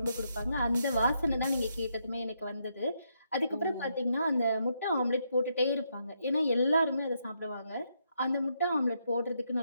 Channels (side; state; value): both; inverted; correlation -0.78